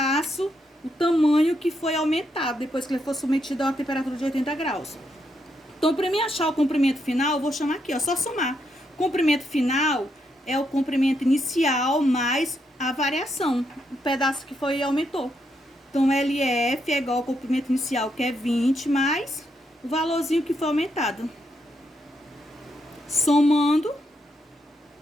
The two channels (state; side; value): normal; both; correlation 0.80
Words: o tamanho que foi aumentado depois que ele for submetido a uma temperatura de 80 graus. Então, para mim achar o comprimento final, eu vou chamar aqui, ó, só somar. Comprimento final é o comprimento inicial mais a variação, o pedaço que foi e aumentou. Então, LF é igual ao comprimento inicial, que é 20, mais o valorzinho que foi aumentado. Somando,